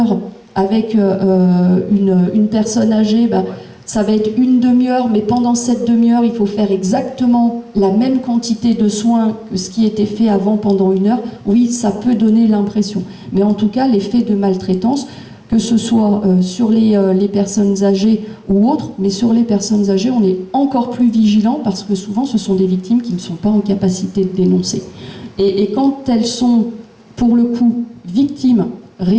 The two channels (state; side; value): identical; both; correlation 1.00